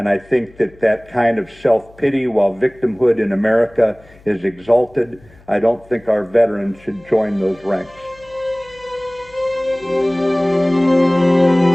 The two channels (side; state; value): left; noise; hum, 26 dB below the sound